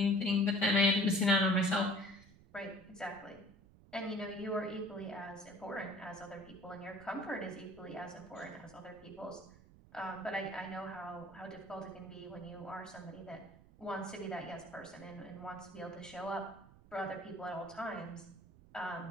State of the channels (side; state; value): right; noise; rumble, 22 dB below the sound